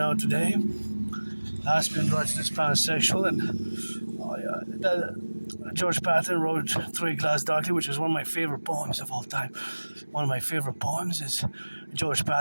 today. Aspie androgynous pansexual, and George Patton wrote Through a Glass Darkly, which is one of my favorite poems of all time. One of my favorite poems is George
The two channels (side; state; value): both; inverted; correlation -1.00